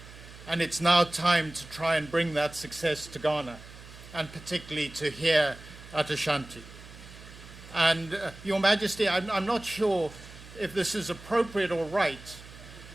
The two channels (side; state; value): right; noise; hum, 17 dB below the sound